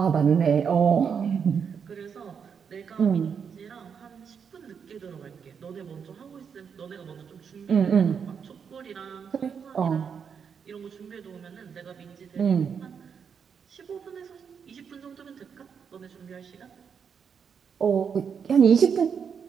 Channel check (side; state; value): left; quieter; 6.8 dB